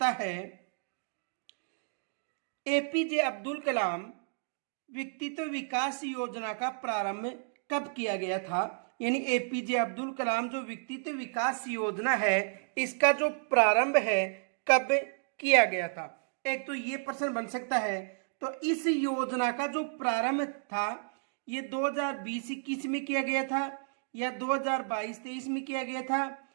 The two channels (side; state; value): left; silent; digital silence